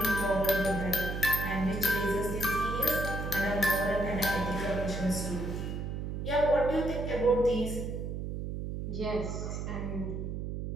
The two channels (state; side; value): noise; right; hum, 4 dB below the sound